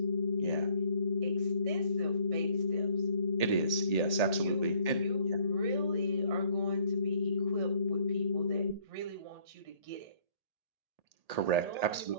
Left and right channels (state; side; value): late; left; 1.8 ms